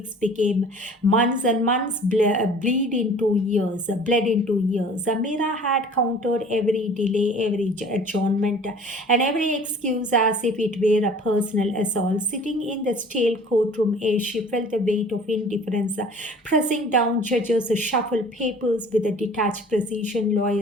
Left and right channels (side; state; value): both; normal; correlation 0.48